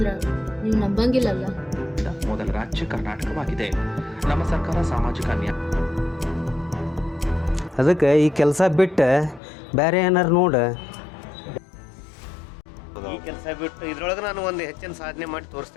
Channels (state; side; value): drops out; right; at 9.4 s